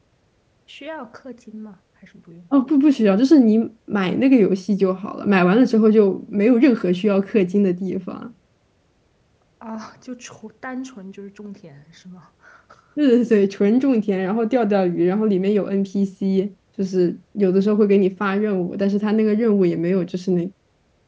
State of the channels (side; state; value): both; identical; correlation 1.00